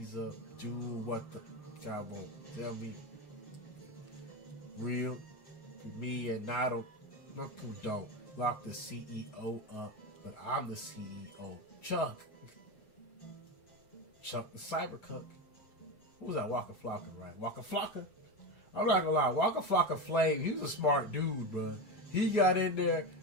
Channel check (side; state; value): right; late; 7.4 ms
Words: up, do what the guy won't tell me. Real, me and not who don't. Lock the CEO up, but I'm the CEO. Chuck the Cybercuck. Who was that? Waka Flocka, right? Waka Flocka. I'm not gonna lie, Waka Flocka Flame, he was a smart dude, bro. He got in there,